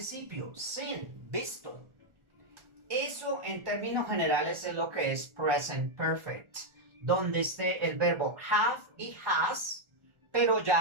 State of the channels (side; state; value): left; late; 1.4 ms